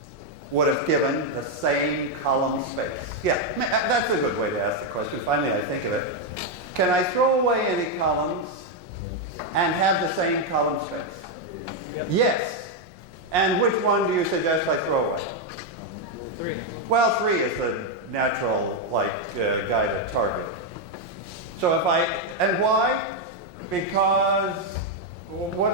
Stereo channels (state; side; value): late; left; 5.6 ms